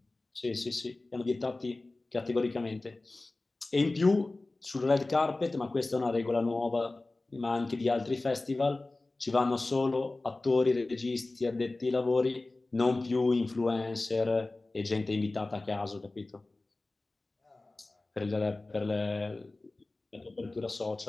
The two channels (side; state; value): right; quieter; 3.1 dB